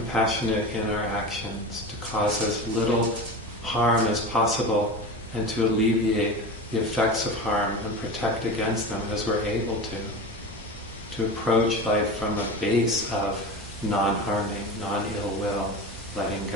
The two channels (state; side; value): normal; both; correlation 0.28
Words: in our actions, to cause as little harm as possible and to alleviate the effects of harm and protect against them as we're able to approach life from a base of non-harming, non-ill will, letting